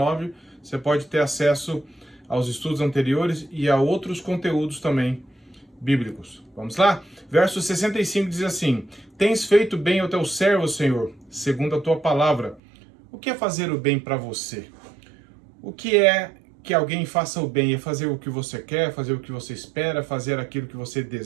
você pode ter acesso aos estudos anteriores e a outros conteúdos também bíblicos. Vamos lá? Verso 65 diz assim: Tens feito bem ao teu servo, Senhor, segundo a tua palavra. O que é fazer o bem para você? O que é que alguém faça o bem? É fazer o que você quer, fazer o que você espera, fazer aquilo que você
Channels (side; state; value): left; drops out; at 12.6 s